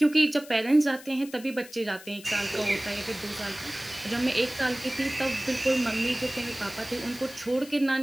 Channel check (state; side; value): noise; left; hiss, 18 dB below the sound